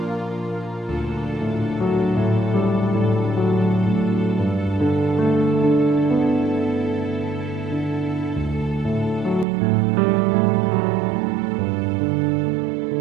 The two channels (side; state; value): left; drops out; at 9.5 s